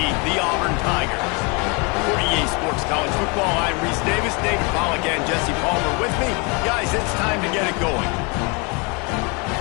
the Auburn Tigers. For EA Sports College Football, I'm Reese Davis, David Pollack, and Jesse Palmer with me. Guys, it's time to get it going.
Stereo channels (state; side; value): quieter; right; 30.2 dB